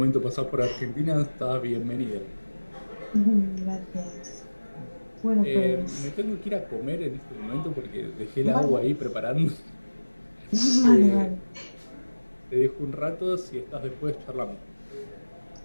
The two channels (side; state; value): both; inverted; correlation -1.00